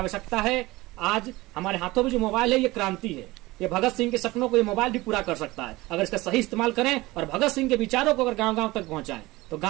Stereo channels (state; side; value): quieter; left; 20.1 dB